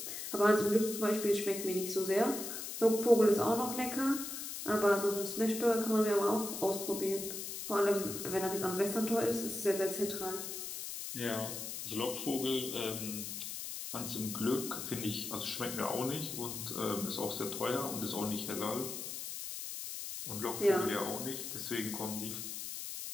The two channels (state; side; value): noise; left; hiss, 6 dB below the sound